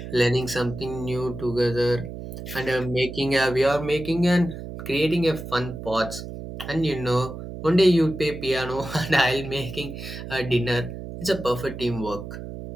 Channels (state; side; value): noise; right; hum, 10 dB below the sound